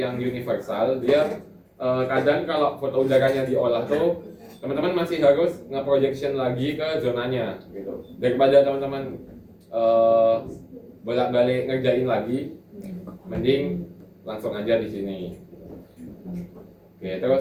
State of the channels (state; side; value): identical; both; correlation 1.00